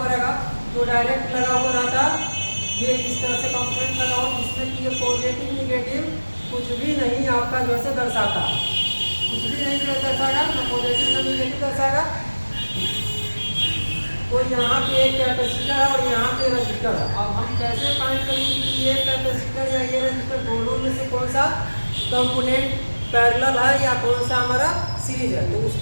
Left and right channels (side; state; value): both; inverted; correlation -1.00